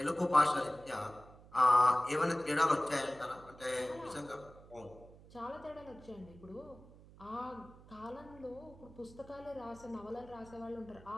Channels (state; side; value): noise; right; hum, 21 dB below the sound